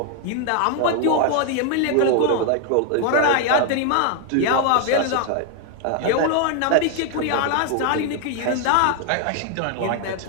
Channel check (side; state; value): both; different; correlation 0.00